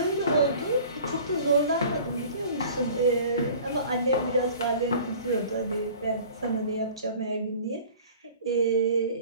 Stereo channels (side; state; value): both; inverted; correlation -0.46